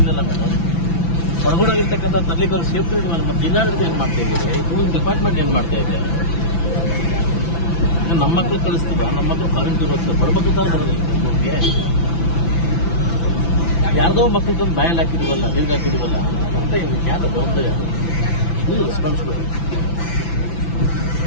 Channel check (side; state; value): right; late; 5.9 ms